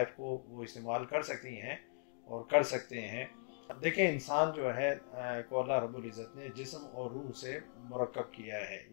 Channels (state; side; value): silent; right; digital silence